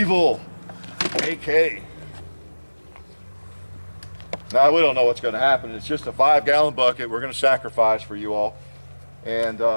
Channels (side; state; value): both; inverted; correlation -1.00